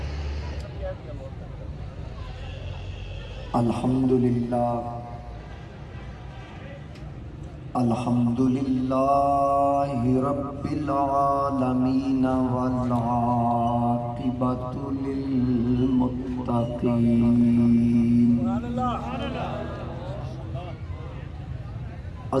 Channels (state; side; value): identical; both; correlation 1.00